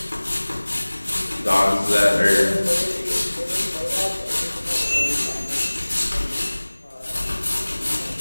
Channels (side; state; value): both; inverted; correlation -1.00